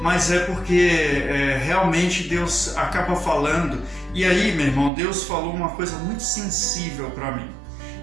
é porque realmente Deus acaba falando. E aí, meu irmão, Deus falou uma coisa muito sensível para mim.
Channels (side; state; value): left; drops out; at 4.9 s